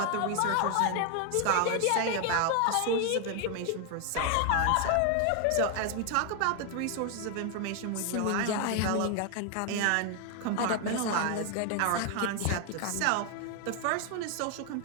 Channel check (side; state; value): both; different; correlation 0.00